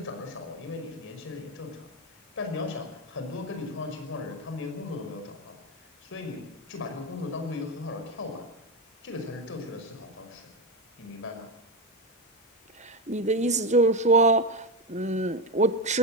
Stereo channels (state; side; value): normal; both; correlation 0.13